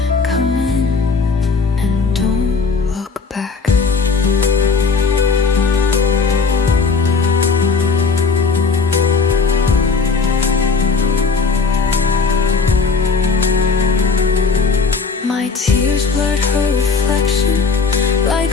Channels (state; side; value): quieter; right; 4.7 dB